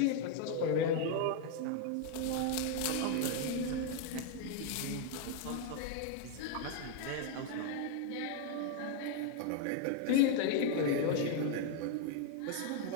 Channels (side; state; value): both; different; correlation 0.00